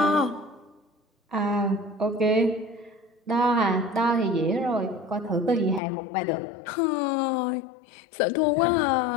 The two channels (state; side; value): drops out; right; at 5.8 s